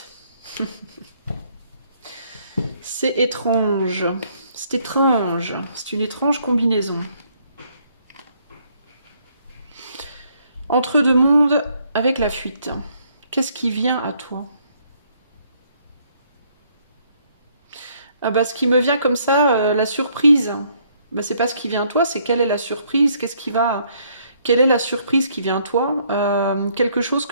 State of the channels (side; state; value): both; inverted; correlation -0.67